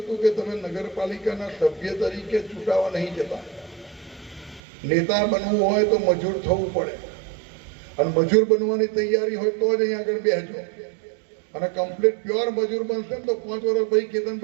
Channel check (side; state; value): left; drops out; at 4.6 s